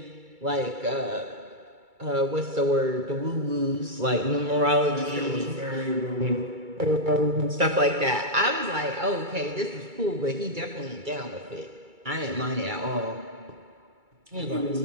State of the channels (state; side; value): late; left; 2.3 ms